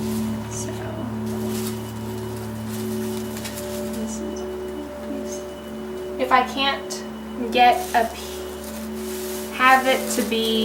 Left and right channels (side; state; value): both; identical; correlation 1.00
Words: So if I can't get have it to